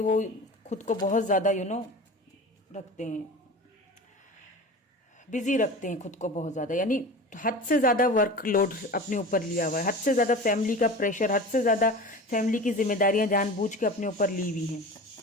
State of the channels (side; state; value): both; normal; correlation 0.34